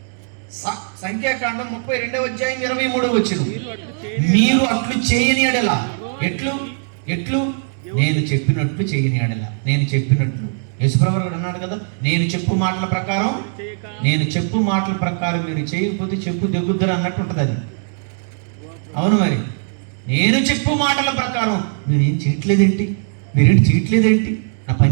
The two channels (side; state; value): left; silent; digital silence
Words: సంఖ్యాకాండం 32వ అధ్యాయం 23వ వచనం. మీరు అట్లు చేయని ఎడల. ఎట్లు? నేను చెప్పినట్లు చేయని ఎడల. నేను చెప్పినట్లు యేసుప్రభువు కూడా అన్నాడు కదా, నేను చెప్పు మాటల ప్రకారం మీరు చేయకపోతే చెప్పు దెగ్గుద్దరు అన్నట్టు ఉంటుంది అది. అవును, మరి నేను చెప్పు మాటల ప్రకారం మీరేం చేయట్లేదేంటి? నా